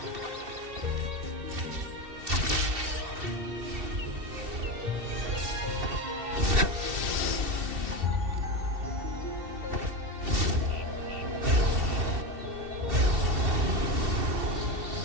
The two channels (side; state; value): left; late; 2.7 ms